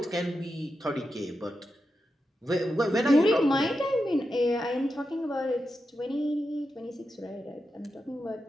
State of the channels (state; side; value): normal; both; correlation 0.88